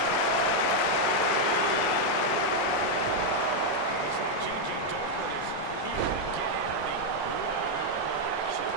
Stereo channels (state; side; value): different; both; correlation 0.00